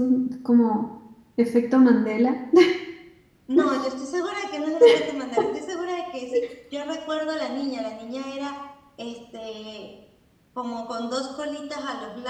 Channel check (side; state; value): both; identical; correlation 1.00